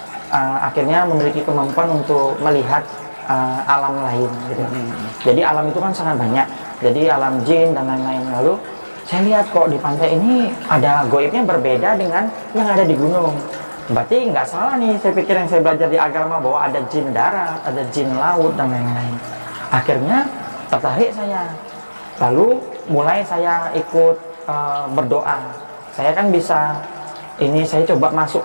akhirnya memiliki kemampuan untuk melihat alam lain gitu. Jadi alam itu kan sangat banyak, jadi alam jin dan lain-lain. Lalu saya lihat kok di pantai ini ada goibnya berbeda dengan yang ada di gunung. Berarti nggak salah nih, saya pikir yang saya belajar di agama bahwa ada jin darat, ada jin laut dan lain-lain. Akhirnya tertarik saya, lalu mulai saya ikut berdoa. Saya kan bisa, ini saya coba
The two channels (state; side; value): inverted; both; correlation -1.00